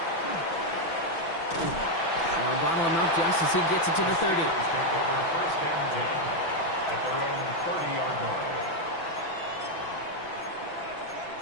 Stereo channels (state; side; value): late; right; 6.0 ms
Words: They'll bottle him up just as he gets it to the 30. Take over 1st and 10 at their own 30-yard line.